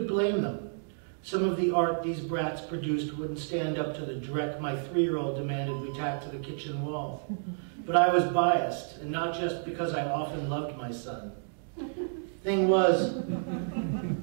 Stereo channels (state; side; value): silent; left; digital silence